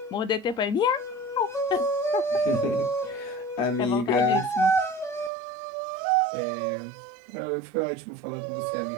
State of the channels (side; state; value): left; drops out; at 5.3 s